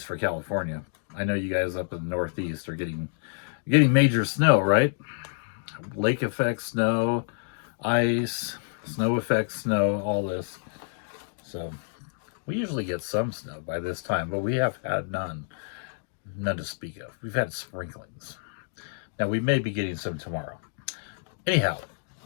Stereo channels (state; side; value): silent; right; digital silence